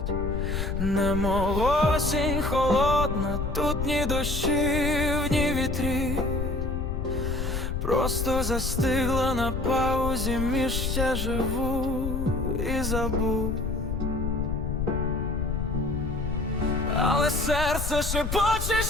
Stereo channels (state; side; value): noise; left; rumble, 2 dB below the sound